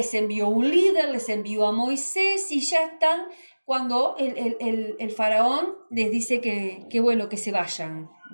envió un líder, les envió a Moisés y ya están cuando el faraón les dice que bueno, que se vayan,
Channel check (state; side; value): inverted; both; correlation -1.00